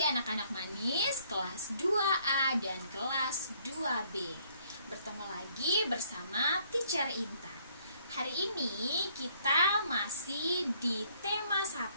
anak-anak manis kelas 2A dan kelas 2B. Bertemu lagi bersama Teacher Intan. Hari ini kita masih di tema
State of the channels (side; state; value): both; inverted; correlation -0.65